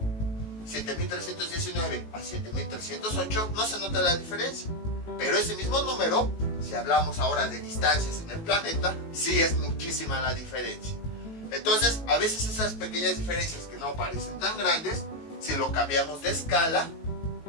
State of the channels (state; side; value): late; right; 18 ms